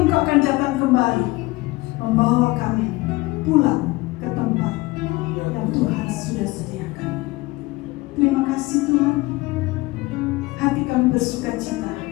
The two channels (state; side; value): quieter; right; 21.0 dB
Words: Engkau akan datang kembali membawa kami pulang ke tempat yang Tuhan sudah sediakan. Terima kasih Tuhan. Hati kami bersukacita